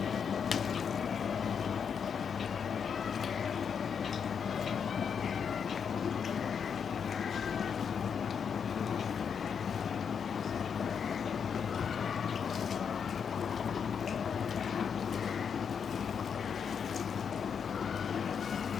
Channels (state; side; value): quieter; right; 6.9 dB